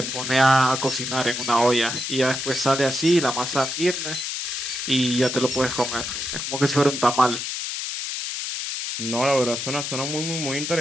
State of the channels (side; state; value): left; noise; hiss, 4 dB below the sound